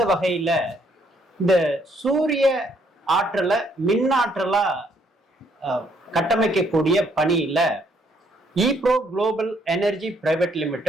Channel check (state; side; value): normal; both; correlation 0.69